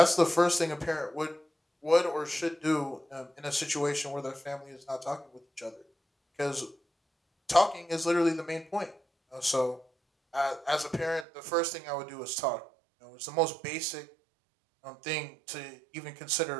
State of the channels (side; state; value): left; drops out; at 11.2 s